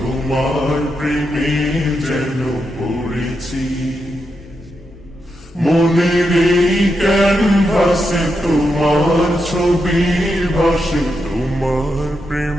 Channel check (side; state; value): both; normal; correlation 0.85